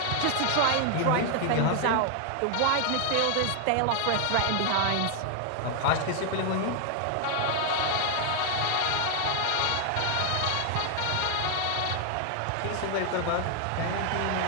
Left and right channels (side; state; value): both; different; correlation 0.00